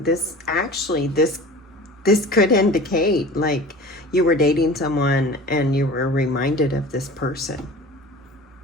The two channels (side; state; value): both; normal; correlation 0.39